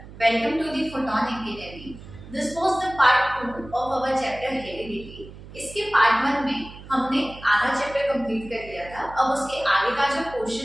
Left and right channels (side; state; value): right; noise; hum, 16 dB below the sound